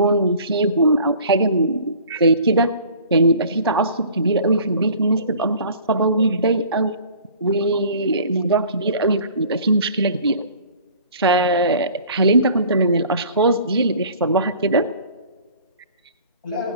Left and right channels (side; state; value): both; inverted; correlation -0.48